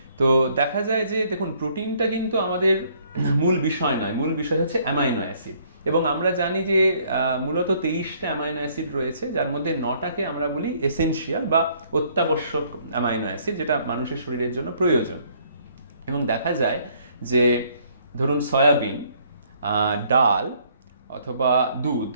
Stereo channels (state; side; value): inverted; both; correlation -0.64